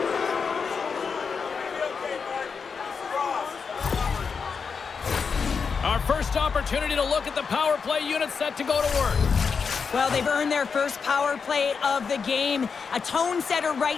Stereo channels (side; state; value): right; quieter; 5.6 dB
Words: Our first opportunity to look at the power play unit set to go to work. Well, they've earned their first power play of the game. A tone setter